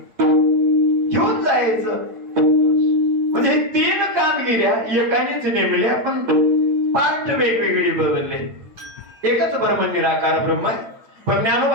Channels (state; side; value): late; left; 8.9 ms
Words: घेऊन जायचं. म्हणजे हे 3 कामगिऱ्या एकानेच नेमल्या, पण पार्ट वेगवेगळी बदलले. एकच ब्रह्म निराकार ब्रह्म आहे. पण